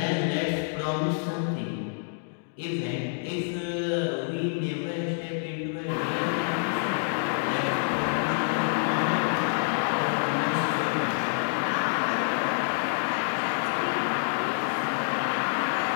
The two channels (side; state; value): right; silent; digital silence